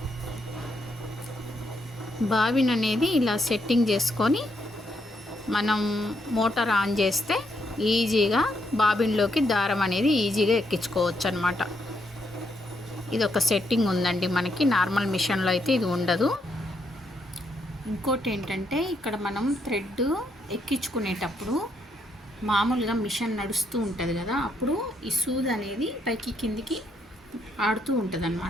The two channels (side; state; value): both; normal; correlation 0.76